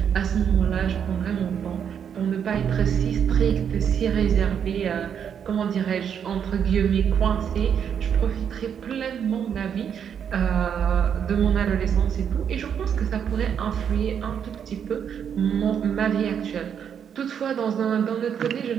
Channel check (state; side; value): quieter; left; 8.0 dB